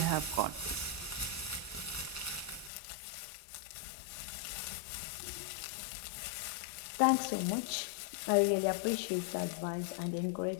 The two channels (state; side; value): drops out; right; at 2.7 s